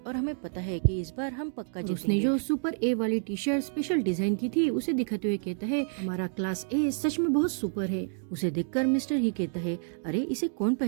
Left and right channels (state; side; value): silent; left; digital silence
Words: हमें पता है कि इस बार हम पक्का जीतेंगे। उसने जो सुपर ए वाली टी शर्ट स्पेशल डिजाइन की थी उसे दिखाते हुए कहता है हमारा क्लास ए सच में बहुत सुपर है। उसे देखकर मिस्टर ही कहता है अरे इसे कौन